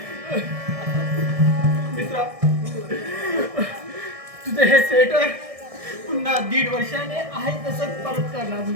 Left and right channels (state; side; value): late; left; 1.6 ms